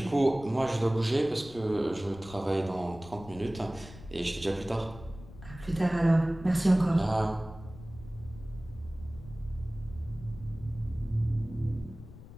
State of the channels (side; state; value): left; noise; rumble, 16 dB below the sound